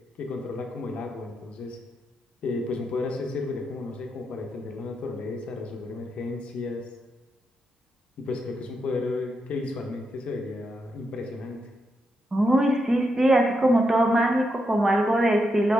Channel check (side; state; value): both; normal; correlation 0.83